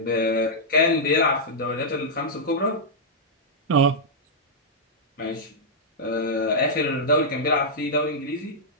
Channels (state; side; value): normal; both; correlation -0.08